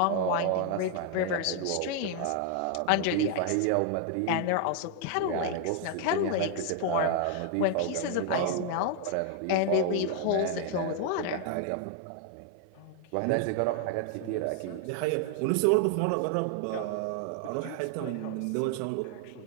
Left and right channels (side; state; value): both; different; correlation 0.00